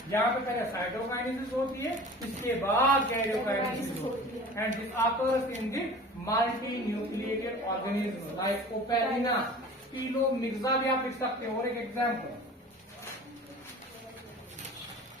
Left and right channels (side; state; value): both; normal; correlation 0.41